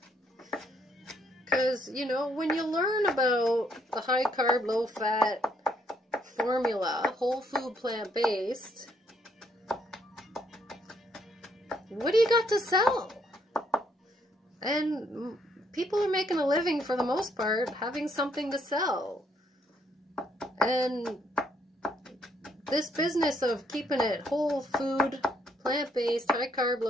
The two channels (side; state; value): both; normal; correlation 0.71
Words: Because, you know, when you learn about the high carb, low fat formula, whole food, plant-based, what do you got to sell? And people are making a living for the most part having something to sell. And this business of keeping it whole food, plant-based, high carb,